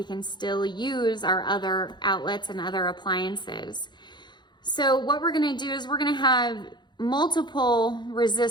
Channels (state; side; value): late; right; 0.21 ms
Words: can still use our other outlets and other appliances. So what we're going to do is we're going to have multiple